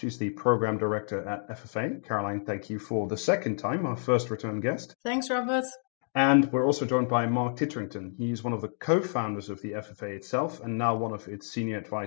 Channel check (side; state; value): right; silent; digital silence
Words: the Program Director at FFA. Caroline, thank you for the second time, our first return guest. Thanks, Robert. And we're also joined by Mark Titterington. He's one of the co-founders of the FFA itself and now one of its senior